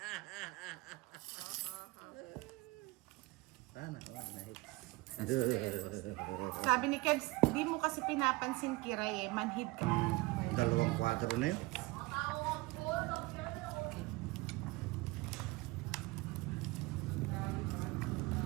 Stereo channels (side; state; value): left; quieter; 22.7 dB